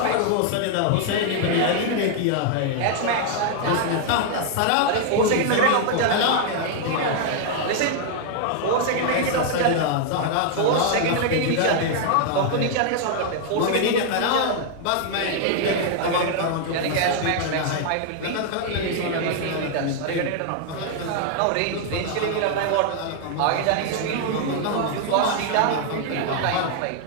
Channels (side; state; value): both; different; correlation 0.00